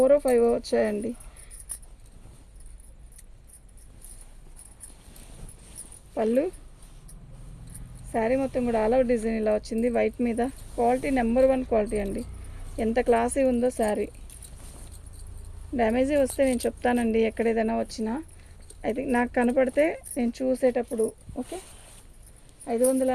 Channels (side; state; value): both; identical; correlation 1.00